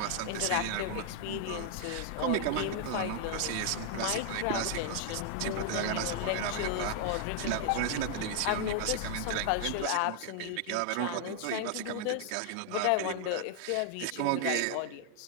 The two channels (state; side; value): different; both; correlation 0.00